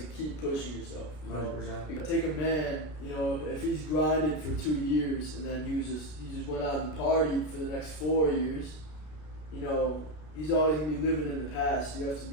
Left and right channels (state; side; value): late; right; 33 ms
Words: keep pushing yourself. 100%. You know? Take a man, you know, if he's grinded for 2 years and then he just went out and partied for the next 4 years, you know, he's always gonna be living in the past. You have to